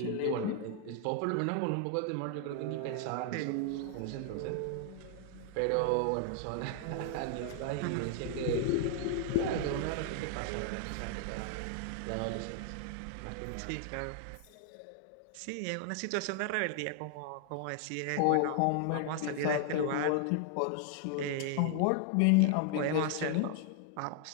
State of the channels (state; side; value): different; both; correlation 0.00